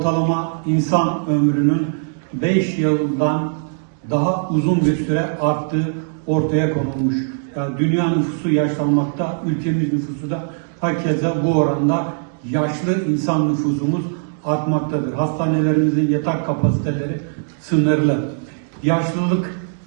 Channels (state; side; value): silent; left; digital silence